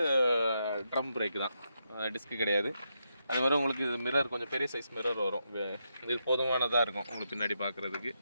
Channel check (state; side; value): inverted; both; correlation -0.83